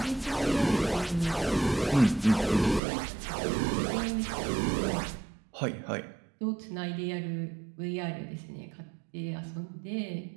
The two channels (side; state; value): left; drops out; at 2.8 s